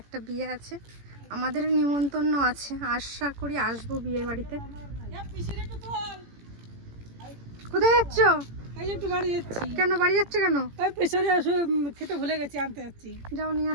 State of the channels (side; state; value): left; late; 18 ms